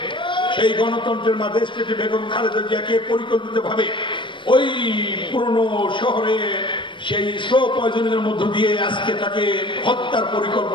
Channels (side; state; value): right; late; 0.24 ms